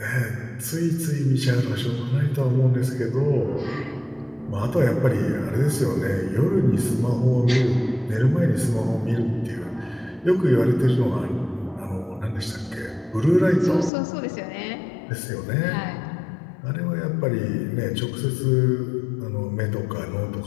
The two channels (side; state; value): right; drops out; at 13.9 s